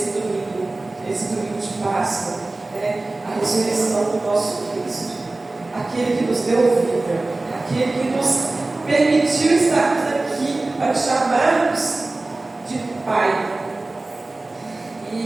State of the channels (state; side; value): quieter; left; 3.1 dB